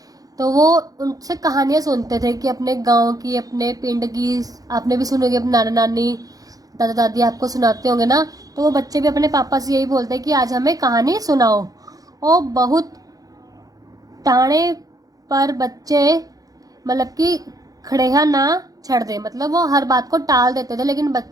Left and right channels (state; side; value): late; left; 0.18 ms